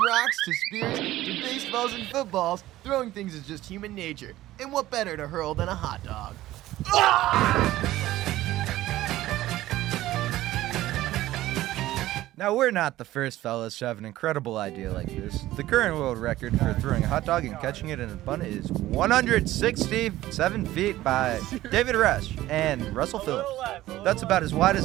rocks to spears to baseballs and footballs, throwing things is just human nature. And what better to hurl than a hot dog? Now, we're not the first fellas to have an incredible idea like this. The current world record for throwing a hot dog and catching it in a bun is 167 feet by David Rush and Russell Phillips. That's about as wide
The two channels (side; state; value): left; quieter; 15.6 dB